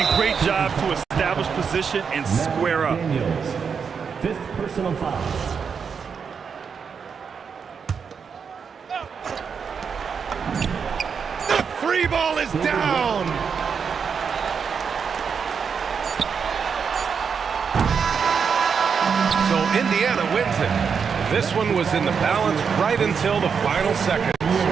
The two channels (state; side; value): quieter; left; 6.3 dB